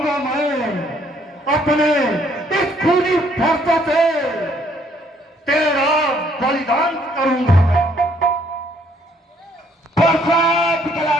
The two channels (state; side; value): normal; both; correlation 0.66